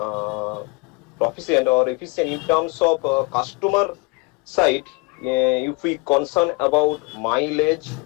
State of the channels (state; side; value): quieter; right; 27.8 dB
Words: proficient or efficient in terms of customer side? If we concern about mileage